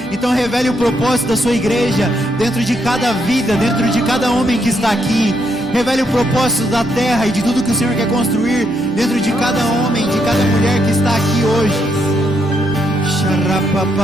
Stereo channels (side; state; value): both; normal; correlation 0.77